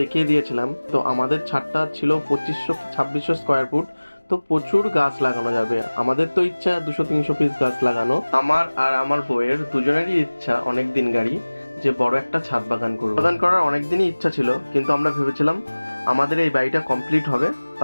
দিয়েছিলাম। তো আমাদের ছাদটা ছিল 2500-2600 স্কোয়ার ফুট। তো প্রচুর গাছ লাগানো যাবে। আমাদের তো ইচ্ছা 200-300 পিস গাছ লাগানো। আমার আর আমার বউয়ের দুজনেরই ইচ্ছা অনেক দিন গাড়ি যে বড় একটা ছাদ বাগান করব। বাগান করার অনেক দিনই ইচ্ছা ছিল, কিন্তু আমরা ভেবেছিলাম আমাদের এই বাড়িটা কমপ্লিট হবে,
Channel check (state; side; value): inverted; both; correlation -1.00